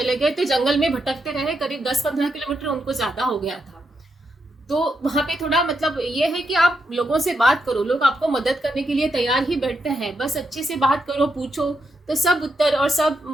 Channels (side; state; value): both; normal; correlation 0.82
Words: गए। तो जंगल में भटकते रहे, करीब 10-15 किलोमीटर उनको ज़्यादा हो गया था। तो वहाँ पे थोड़ा मतलब ये है कि आप लोगों से बात करो, लोग आपको मदद करने के लिए तैयार ही बैठते हैं, बस अच्छे से बात करो, पूछो तो सब उत्तर और